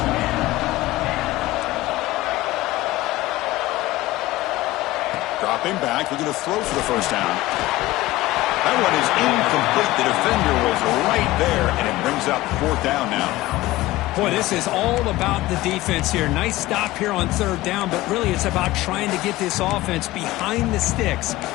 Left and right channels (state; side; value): quieter; right; 17.6 dB